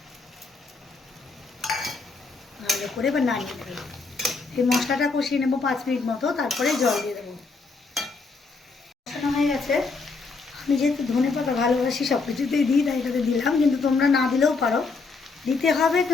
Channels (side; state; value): right; quieter; 4.2 dB